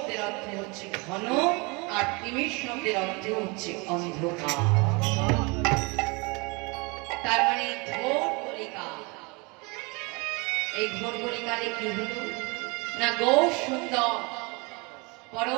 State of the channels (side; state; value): left; quieter; 28.5 dB